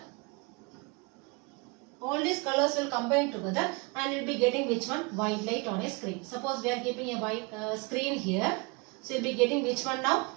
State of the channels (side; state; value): left; quieter; 28.5 dB